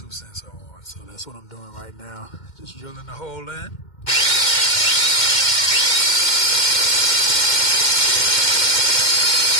sensor on. So that's what I'm doing right now, just drilling the hole in.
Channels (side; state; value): right; late; 2.1 ms